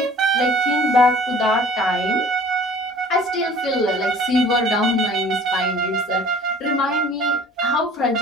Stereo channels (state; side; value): normal; both; correlation 0.49